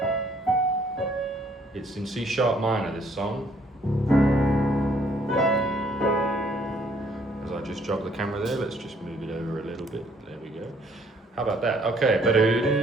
It's in C sharp minor, this song. As I just jog the camera there, let's just move it over a little bit. There we go. How about that? Okay.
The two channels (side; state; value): both; normal; correlation 0.64